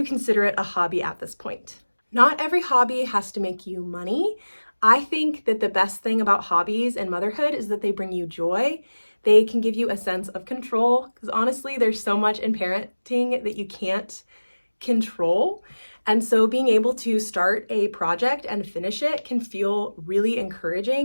consider it a hobby at this point. Not every hobby has to make you money. I think that the best thing about hobbies and motherhood is that they bring you joy. They can give you a sense of control, because honestly, there's so much in parenting that you can't control. And so being able to start a project and finish it can feel really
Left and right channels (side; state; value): both; inverted; correlation -1.00